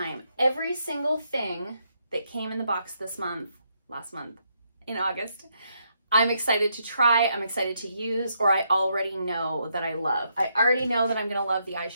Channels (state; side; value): inverted; both; correlation -0.77